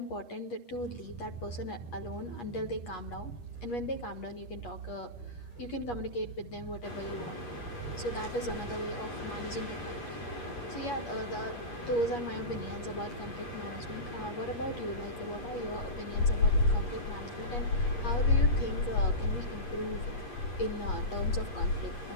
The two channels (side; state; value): right; late; 8.4 ms